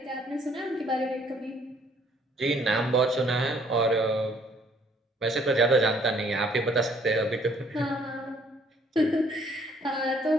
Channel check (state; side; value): normal; both; correlation 0.62